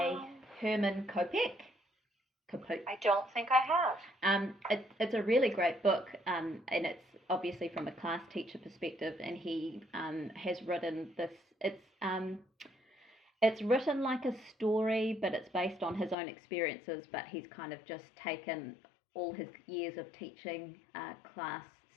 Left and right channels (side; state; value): right; drops out; at 16.2 s